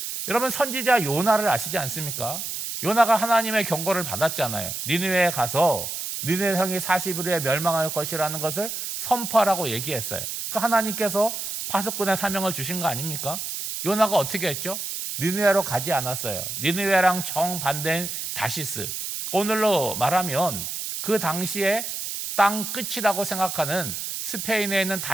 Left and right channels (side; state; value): right; noise; hiss, 5 dB below the sound